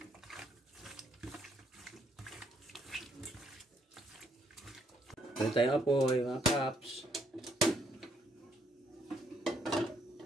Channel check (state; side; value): normal; both; correlation 0.70